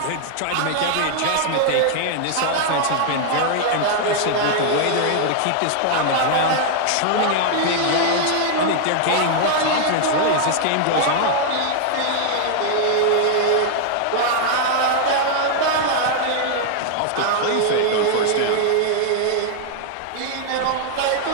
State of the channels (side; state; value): both; different; correlation 0.00